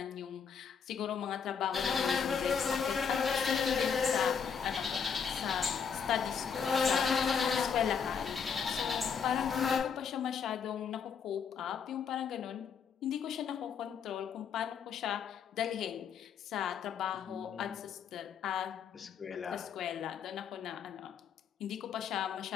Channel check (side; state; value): right; quieter; 6.8 dB